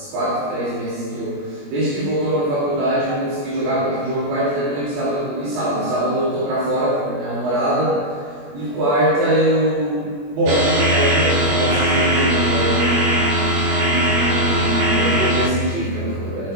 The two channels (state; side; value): late; left; 21 ms